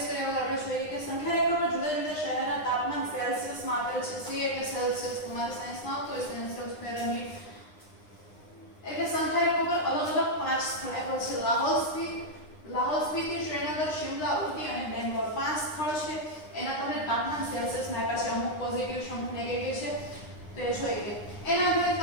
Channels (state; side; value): late; right; 9.8 ms